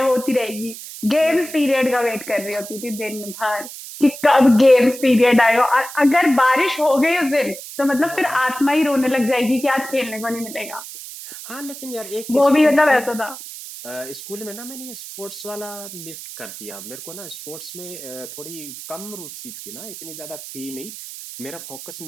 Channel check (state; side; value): noise; right; hiss, 12 dB below the sound